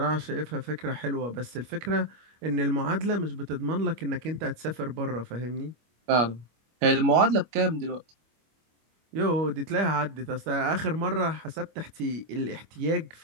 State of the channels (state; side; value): late; left; 25 ms